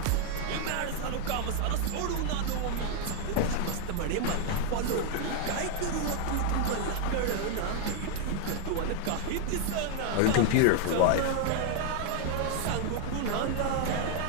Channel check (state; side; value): different; both; correlation 0.00